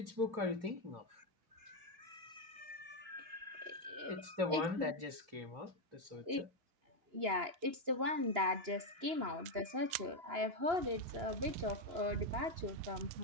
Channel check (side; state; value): left; late; 2.9 ms